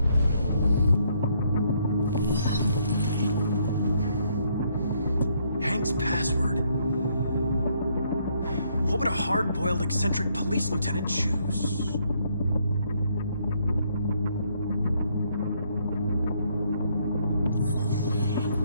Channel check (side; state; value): both; inverted; correlation -0.70